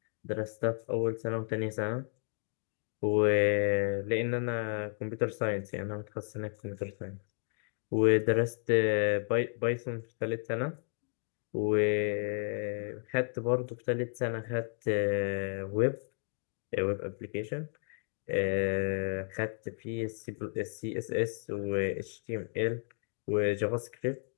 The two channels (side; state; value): right; silent; 56 dB below the other